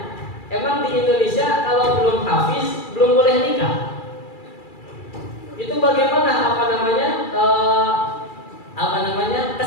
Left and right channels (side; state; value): right; late; 2.3 ms